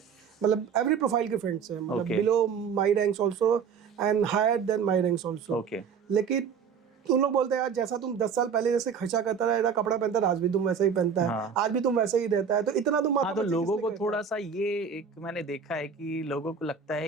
मतलब एवरी प्रोफाइल के फ्रेंड्स हैं, मतलब below my ranks also and higher than my ranks also, लेकिन तुम लोग बोलते हैं यार जैसा तुम 10 साल पहले जैसे खर्चा करता रहा, कपड़ा पहनता रहा, आज भी तुम वैसा ही पहनता है, आज भी तुम वैसे ही रहता है, तो इतना तुम तो लोगों को थोड़ा सा ये एक मैंने देखा है कि लोगों को लगता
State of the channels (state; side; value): quieter; left; 6.6 dB